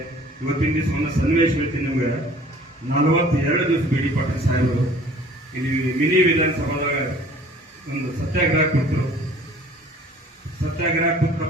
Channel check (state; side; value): normal; both; correlation 0.51